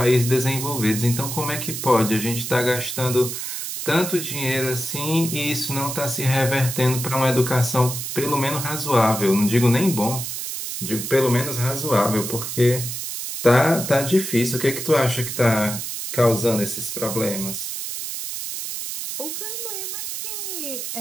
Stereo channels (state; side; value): noise; right; hiss, 5 dB below the sound